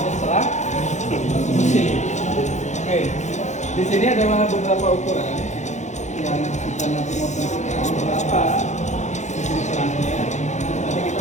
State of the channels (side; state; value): right; late; 0.34 ms